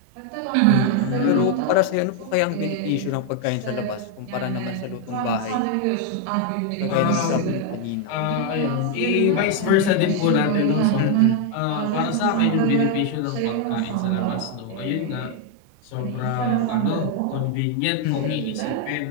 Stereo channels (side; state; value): both; different; correlation 0.00